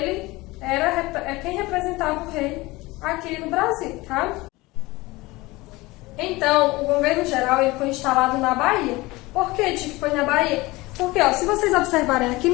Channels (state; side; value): quieter; right; 21.2 dB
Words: é quem representava o rei aqui no Brasil, tá? Então, o governo geral ele foi instalado na Bahia. Por que digo que foi na Bahia? Porque, ó, se vocês observarem aqui